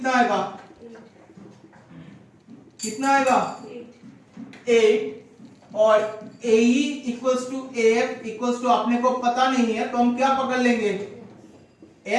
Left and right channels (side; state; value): both; identical; correlation 1.00